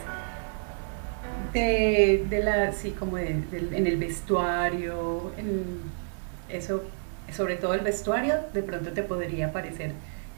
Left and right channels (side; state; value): left; silent; digital silence